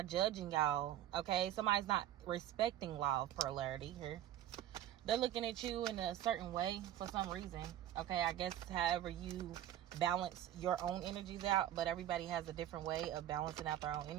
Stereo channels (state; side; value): quieter; left; 12.1 dB